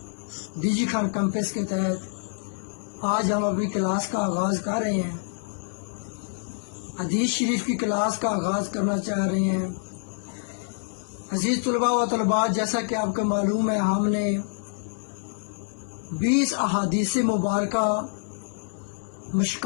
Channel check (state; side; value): silent; right; 60 dB below the other